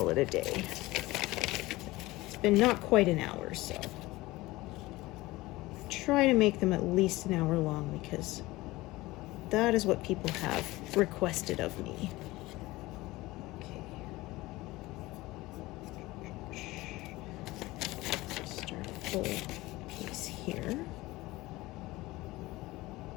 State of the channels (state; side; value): quieter; right; 19.6 dB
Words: it a day. It's been not quite an hour, so try to make them at least an hour long because that is what people have requested of me. Start a full piece here.